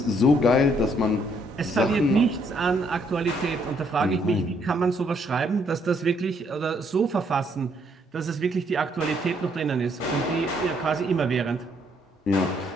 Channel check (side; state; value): both; normal; correlation 0.69